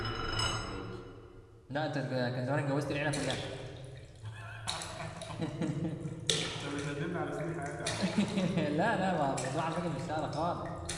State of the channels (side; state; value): both; identical; correlation 1.00